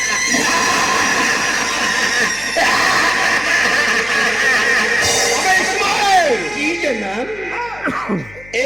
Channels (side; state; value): left; noise; hum, 21 dB below the sound